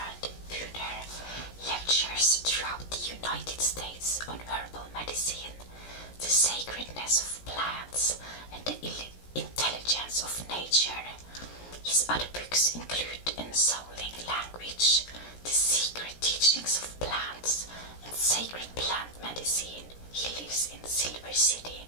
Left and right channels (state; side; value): late; right; 17 ms